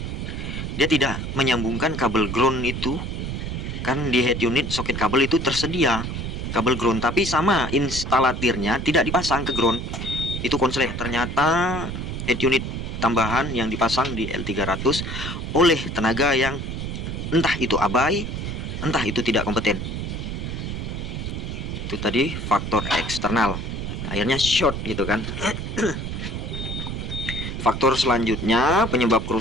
Dia tidak menyambungkan kabel ground itu. Kan di head unit soket kabel itu tersedia kabel ground, tapi sama instalatirnya tidak dipasang ke ground. Itu konslet. Ternyata head unit tambahan yang dipasang di L300 oleh tenaga yang entah itu abai, entah itu tidak kompeten. Itu tadi faktor eksternal, akhirnya short gitu kan. Faktor selanjutnya penyebab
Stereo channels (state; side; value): noise; right; rumble, 5 dB below the sound